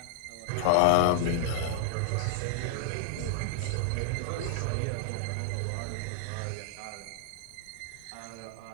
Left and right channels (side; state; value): both; different; correlation -0.01